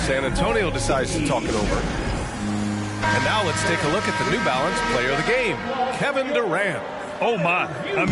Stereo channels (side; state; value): both; identical; correlation 1.00